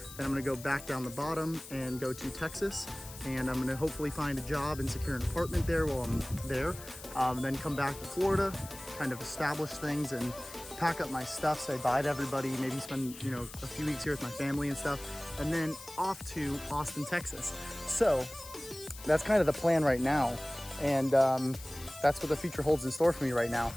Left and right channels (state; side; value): noise; left; hiss, 15 dB below the sound